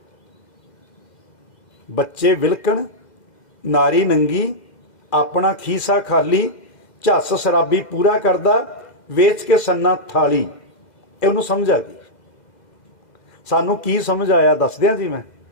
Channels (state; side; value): late; right; 2.0 ms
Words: ਬੱਚੇ ਵਿਲਕਣ, ਨਾਰੀ ਨੰਗੀ, ਆਪਣਾ ਖੀਸਾ ਖਾਲੀ, ਝੱਸ ਸ਼ਰਾਬੀ ਪੂਰਾ ਕਰਦਾ, ਵੇਚ ਕੇ ਸੰਨਾ ਥਾਲੀ। ਇਹ ਉਹਨੂੰ ਸਮਝ ਆ ਗਈ। ਸਾਨੂੰ ਕੀ ਸਮਝ ਆਇਆ ਦੱਸ ਦਿਆਂ ਜੀ। ਮੈਂ